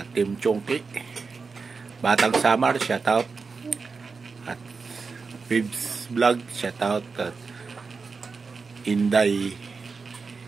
Team Chongki, Batang Samar. Shoutout. At Bibs Vlog. Shoutout. At Inday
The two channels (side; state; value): left; quieter; 4.7 dB